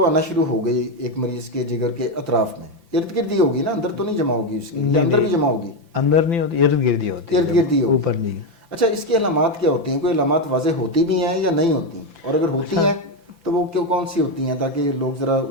آنا شروع ہو گئی ایک مریض کے جگر کے اطراف میں, ارد گرد ہی ہوگی نا, اندر تو نہیں جمع ہوگی اس کی, اندر بھی جمع ہوگی؟ اندر نہیں ہوتی, ارد گرد ہی ہوتی ہے, ارد گرد ہی ہوگی, اوپر نہیں. اچھا اس کی علامات کیا ہوتی ہیں, کوئی علامات واضح ہوتی بھی ہیں یا نہیں ہوتی, اور اگر ہوتی ہیں تو وہ کون سی ہوتی ہیں تاکہ لوگ ذرا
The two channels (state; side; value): late; left; 5.9 ms